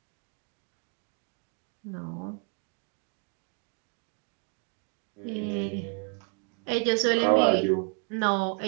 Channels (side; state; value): left; quieter; 36.8 dB